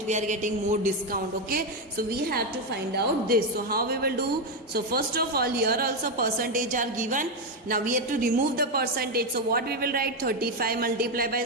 we are getting more discount. Okay, so we have to find out this. So how we will do? So first of all, here also percentage are given. Now we have to remove the percentage. So what we will write? 35 multiplied by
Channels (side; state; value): both; normal; correlation 0.07